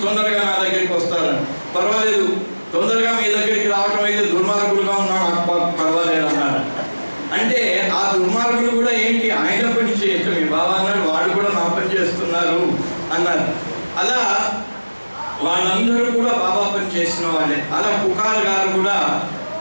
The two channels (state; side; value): inverted; both; correlation -1.00